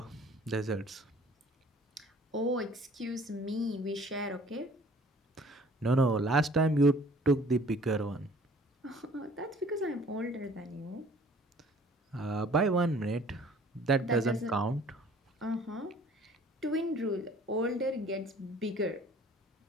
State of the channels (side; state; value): both; normal; correlation 0.53